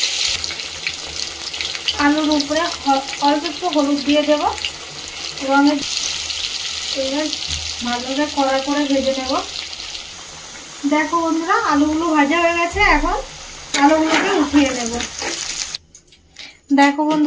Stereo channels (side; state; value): both; identical; correlation 1.00